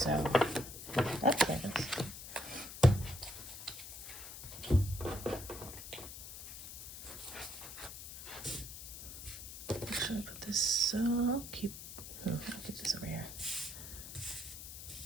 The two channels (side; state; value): left; noise; hiss, 11 dB below the sound